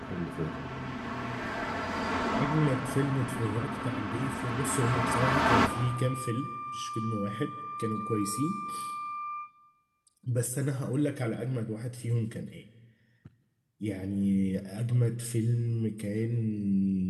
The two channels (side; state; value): both; identical; correlation 1.00